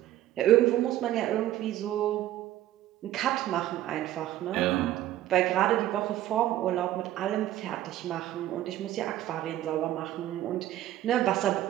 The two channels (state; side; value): quieter; left; 13.5 dB